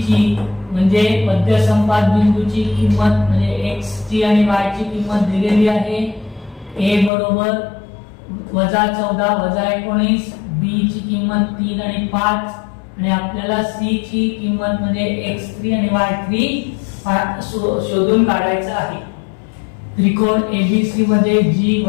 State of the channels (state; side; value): drops out; right; at 7.1 s